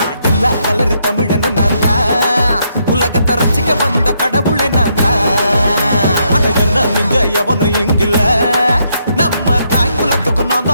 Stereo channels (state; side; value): inverted; both; correlation -0.76